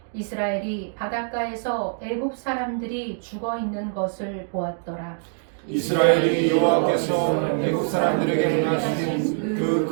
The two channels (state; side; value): silent; left; digital silence